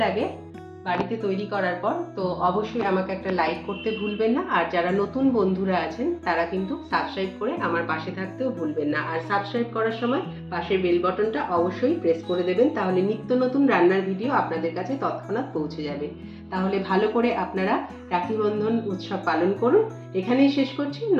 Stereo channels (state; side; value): identical; both; correlation 1.00